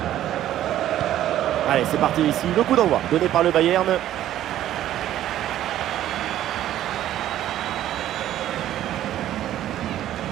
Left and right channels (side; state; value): left; quieter; 12.5 dB